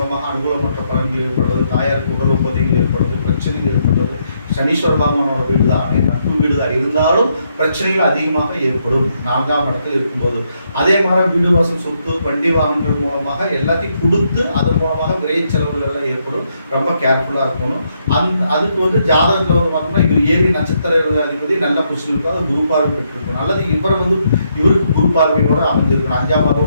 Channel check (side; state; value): both; inverted; correlation -0.76